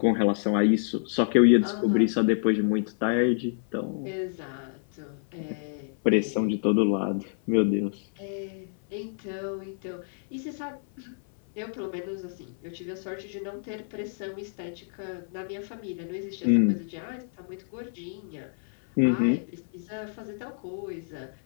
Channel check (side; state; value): right; silent; 56 dB below the other